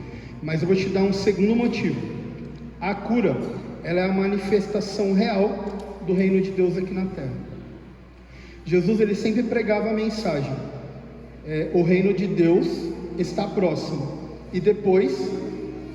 Mas eu vou te dar um segundo motivo. A cura, ela é a manifestação real do reino de Deus aqui na terra. Jesus, ele sempre pregava a mensagem: o reino de Deus está próximo, e depois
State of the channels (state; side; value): identical; both; correlation 1.00